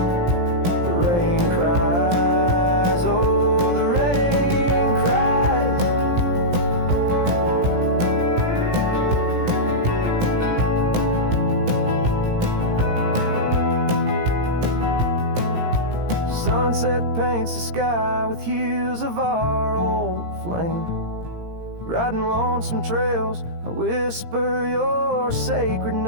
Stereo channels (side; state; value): left; late; 17 ms